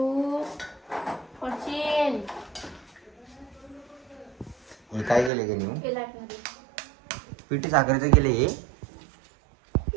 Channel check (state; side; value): drops out; left; at 5.3 s